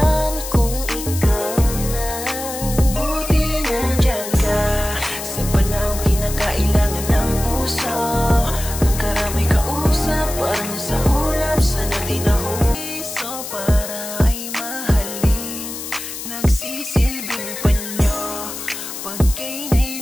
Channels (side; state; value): left; noise; hiss, 8 dB below the sound